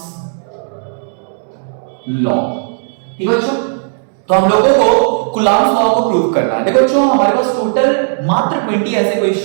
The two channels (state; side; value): silent; left; digital silence